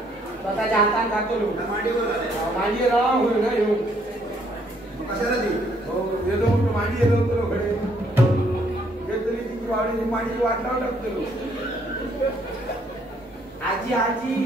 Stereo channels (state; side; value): normal; both; correlation 0.67